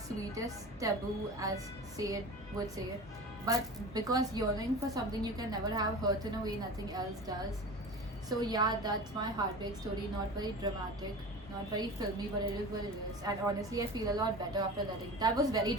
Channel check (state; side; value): normal; both; correlation 0.33